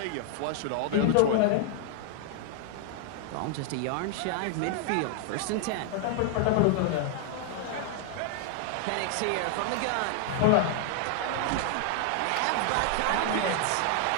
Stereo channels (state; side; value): different; both; correlation 0.00